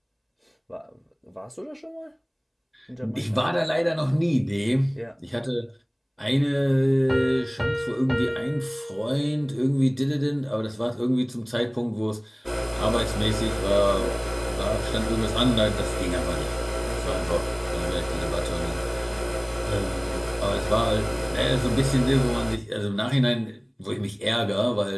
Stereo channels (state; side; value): identical; both; correlation 1.00